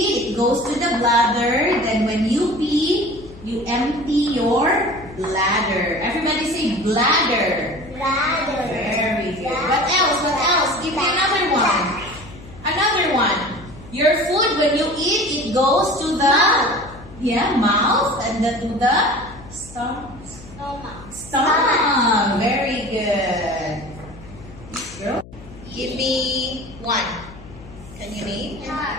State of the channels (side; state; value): left; noise; hum, 18 dB below the sound